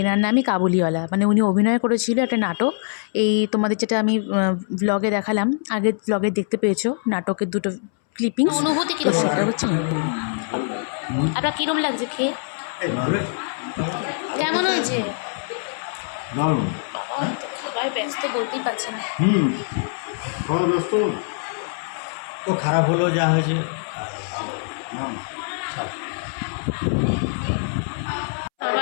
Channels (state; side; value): silent; right; 63 dB below the other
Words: এনার নামই কাবুলিওয়ালা, মানে উনি অভিনয় করেছিল একটা নাটক। এই তোমাদের যেটা আমি ব্লগে দেখালাম, আগের ব্লগে দেখতে পেয়েছো নাটকের দুটো ক্লিপিংস। অনুভূতি কি সেটা হচ্ছে আপনার কিরম লাগছে খেয়ে? কেমন হয়েছে? দারুণ। বাবা তো খাবার ব্যস্ত বলতেই পারছে না। খাওয়া ব্যস্ত তো খারাপ হলো যা হয়েছে।